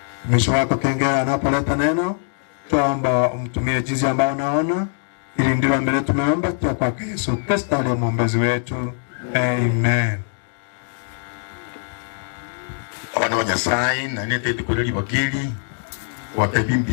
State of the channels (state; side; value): silent; right; digital silence